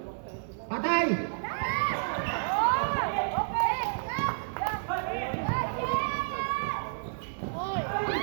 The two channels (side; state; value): left; silent; 58 dB below the other